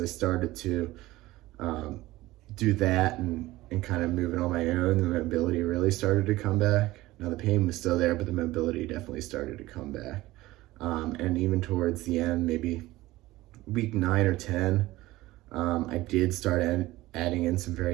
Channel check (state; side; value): quieter; left; 17.9 dB